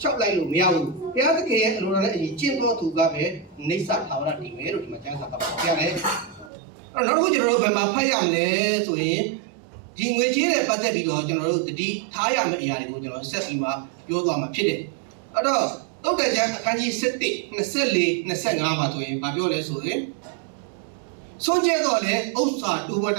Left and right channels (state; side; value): drops out; left; at 6.5 s